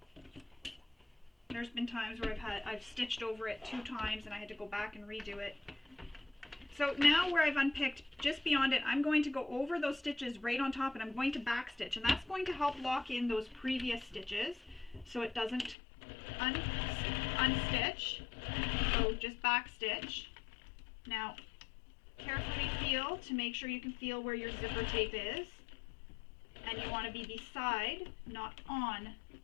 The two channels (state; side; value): drops out; right; at 15.8 s